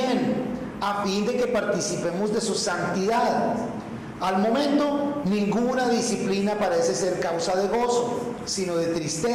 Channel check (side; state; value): both; identical; correlation 1.00